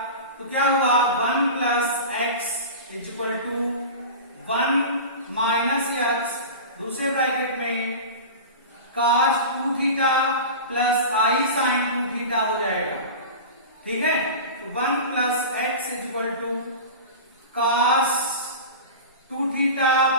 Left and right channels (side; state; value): both; inverted; correlation -0.30